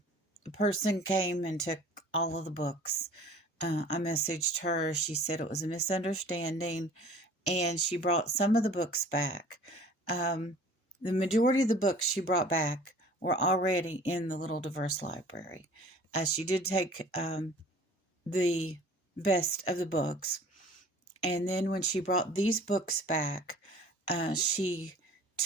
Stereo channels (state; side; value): normal; both; correlation 0.47